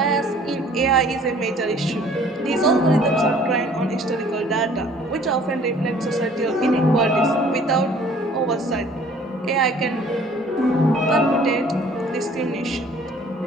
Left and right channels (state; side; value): normal; both; correlation 0.54